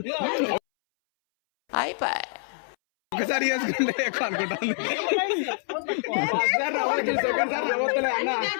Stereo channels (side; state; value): right; silent; 61 dB below the other